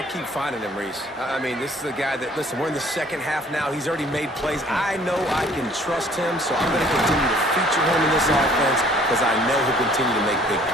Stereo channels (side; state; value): both; normal; correlation 0.56